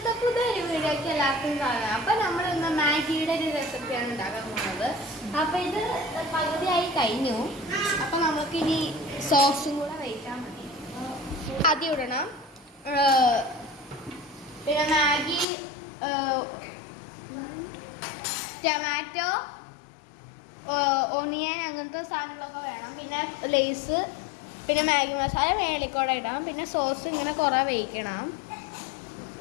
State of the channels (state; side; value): drops out; right; at 15.5 s